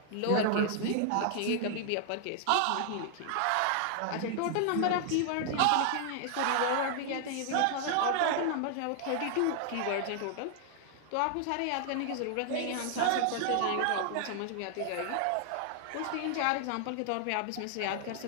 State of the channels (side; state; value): both; different; correlation 0.00